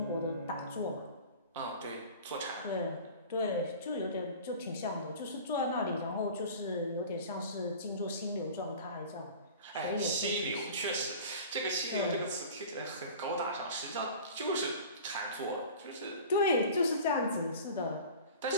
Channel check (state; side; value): inverted; both; correlation -0.40